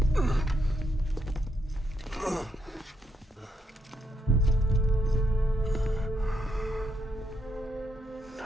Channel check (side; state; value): both; normal; correlation 0.78